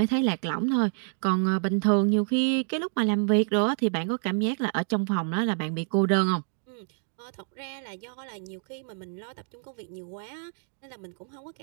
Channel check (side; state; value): left; silent; digital silence